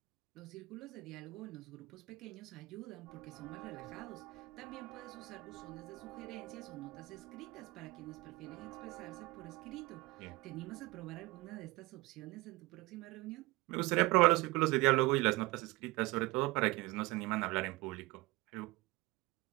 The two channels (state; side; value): quieter; left; 21.9 dB